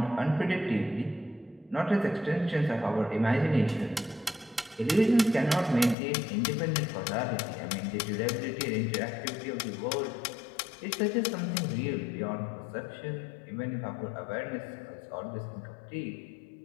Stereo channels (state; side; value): drops out; right; at 6.0 s